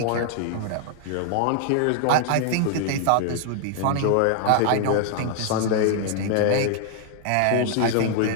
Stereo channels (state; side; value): different; both; correlation 0.00